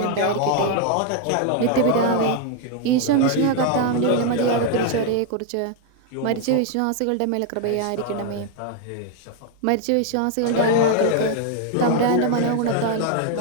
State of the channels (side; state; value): both; different; correlation 0.00